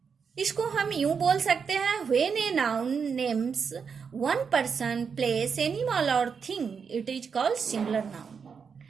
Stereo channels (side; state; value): left; quieter; 6.1 dB